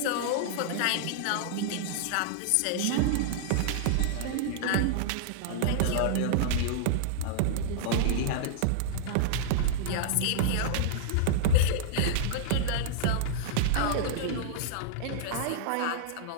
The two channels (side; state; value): both; different; correlation -0.01